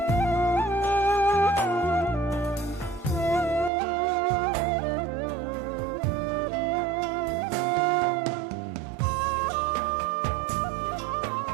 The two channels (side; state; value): left; drops out; at 3.7 s